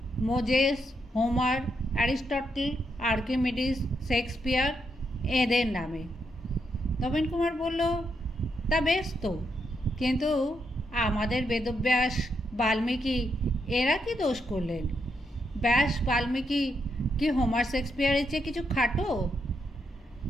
Moses, Homer, Aristotle, Archimedes, Shakespeare এদের নামে। নবীন কুমার বলল, তা বেশ তো, কিন্তু আমাদের বেদব্যাস, বাল্মীকি এরা কি দোষ করলেন? ব্যাস, বাল্মীকি কি হোমার, শেক্সপিয়ারের চেয়ে কিছু খাটো?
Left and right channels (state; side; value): normal; both; correlation 0.80